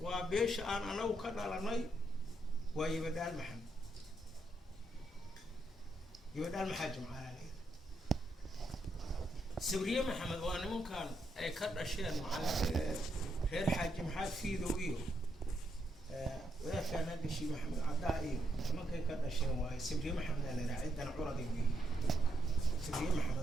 وبيش أنا وكذا لناي ويبدال محمد يبدال محاجم على ليه سوريا محمد وأنا ممكن أي كذا أشياء مع غير حاجم حاج في ذويه ولا كان هذا الشيء محمد عدائي ممكن كذا أشياء واي سوريا محمد أنا عندنا عرضي به سوريا محمد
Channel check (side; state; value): both; normal; correlation 0.79